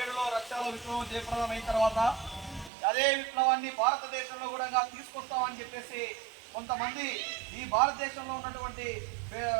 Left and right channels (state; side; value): drops out; left; at 2.7 s